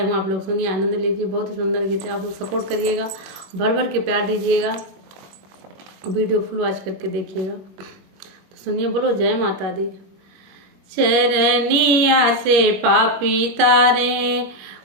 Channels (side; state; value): left; late; 21 ms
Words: हूँ, आप लोग सुनिए, आनंद लीजिए। बहुत ही सुंदर गीत है, आप लोग सपोर्ट करिएगा, भर भर के प्यार दीजिएगा, वीडियो फुल वॉच करके देखिएगा। तो सुनिए, बोलो जय माता दी। चरनिया से पापी तारे